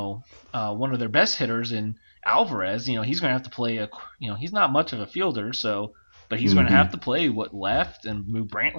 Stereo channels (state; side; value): inverted; both; correlation -1.00